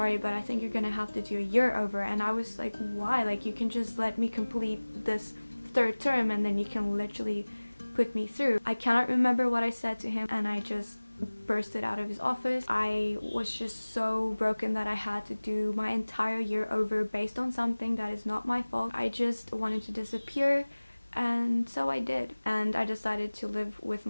but I think you're gonna have to do a year over. And I was like, why? Like, you can just let me complete this 3rd term and then you can literally put me through. I cannot remember what I said to him, and I just bursted out of his office. I was just so broken that I had to do my entire year over based on something that is not my fault. I just wanted to disappear, and so I did. And I decided to live with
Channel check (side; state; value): both; inverted; correlation -1.00